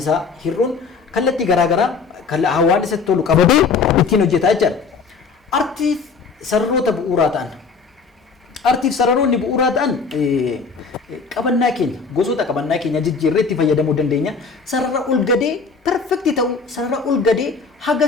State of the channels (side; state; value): right; quieter; 4.9 dB